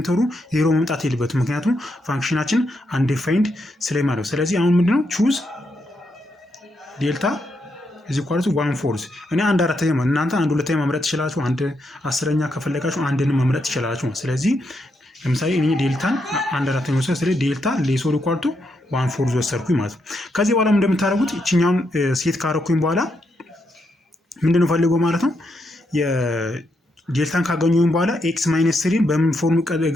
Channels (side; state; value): both; normal; correlation 0.80